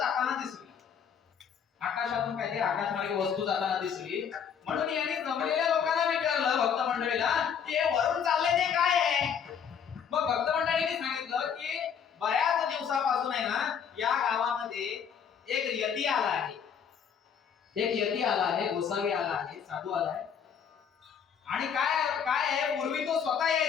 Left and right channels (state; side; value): quieter; right; 7.5 dB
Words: दिसली. आकाशातून काहीतरी आकाशमार्गे वस्तू जाताना दिसली. म्हणून यांनी जमलेल्या लोकांना विचारलं, भक्त मंडळीला, की हे वरून चाललंय ते काय आहे. मग भक्त मंडळींनी सांगितलं की बऱ्याच दिवसापासून आहे ना या गावामध्ये एक यती आला आहे. एक यती आला आहे, गोसावी आला आहे, साधू आला आहे. आणि काय काय आहे, पूर्वी तो स्वतः